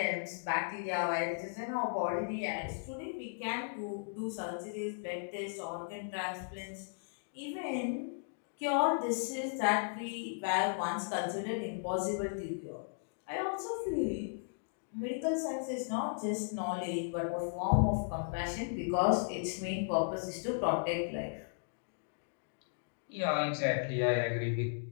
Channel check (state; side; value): silent; right; digital silence